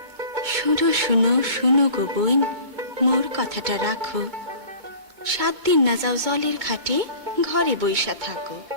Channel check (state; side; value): late; left; 2.2 ms